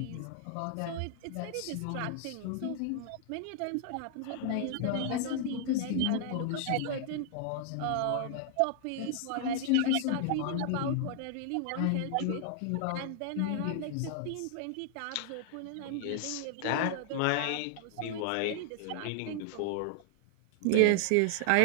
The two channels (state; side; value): different; both; correlation -0.01